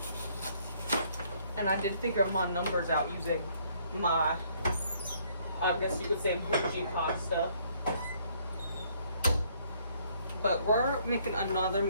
And I did figure my numbers out using my, I guess you could say, bougie pasta. But we're making another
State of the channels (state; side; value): inverted; both; correlation -0.65